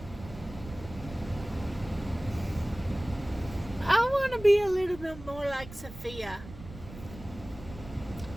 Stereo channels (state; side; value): noise; right; rumble, 15 dB below the sound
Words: I want to be a little bit more like Sophia.